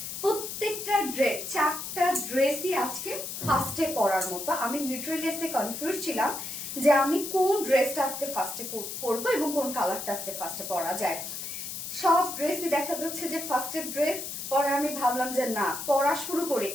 প্রত্যেকটা ড্রেস, 4টা ড্রেসই আজকে ফার্স্টে পরার মতো। আমি লিটারালি আজকে কনফিউজ ছিলাম যে আমি কোন ড্রেসটা আজকে ফার্স্টে পরবো এবং কোন কালারটা আজকে ফার্স্টে পরা যায়। সব ড্রেসই দেখা যাচ্ছে যে ফার্স্টের ড্রেস। পরে আমি ভাবলাম যে না, পড়া শুরু করি,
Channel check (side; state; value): left; noise; hiss, 7 dB below the sound